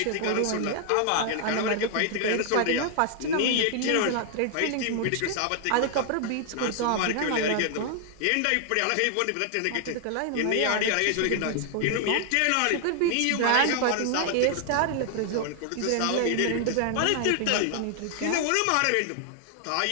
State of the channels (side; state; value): both; different; correlation 0.00